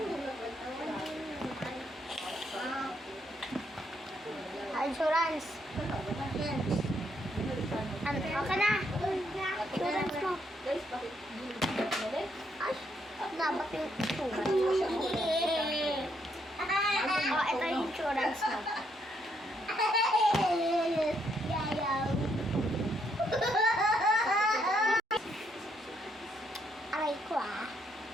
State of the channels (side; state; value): both; normal; correlation 0.74